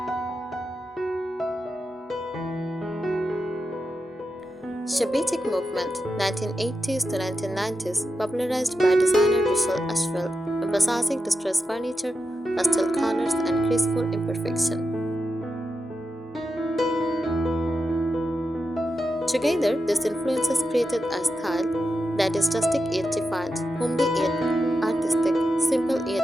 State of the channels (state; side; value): normal; both; correlation 0.89